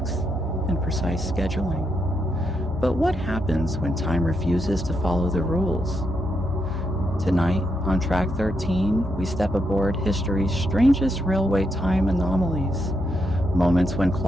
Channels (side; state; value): both; normal; correlation 0.81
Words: and precise scheduling. But what happens when time refuses to follow the rules? Tonight, on Track 13, we step aboard history's strangest railway time anomalies. Moments when